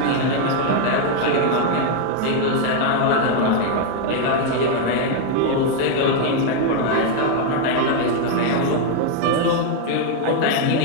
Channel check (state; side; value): different; both; correlation 0.01